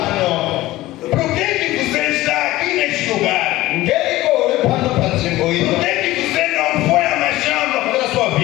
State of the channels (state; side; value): quieter; right; 17.2 dB